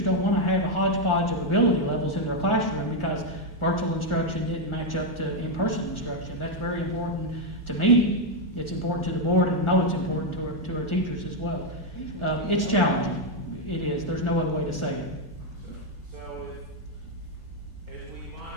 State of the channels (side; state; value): right; late; 1.1 ms